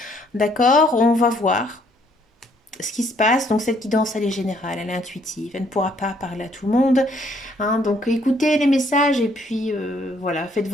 D'accord, on va voir ce qui se passe. Donc cette guidance, elle est générale, elle est intuitive, elle ne pourra pas parler à tout le monde. Hein. Donc écoutez les messages et puis voilà, faites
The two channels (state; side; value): normal; both; correlation 0.66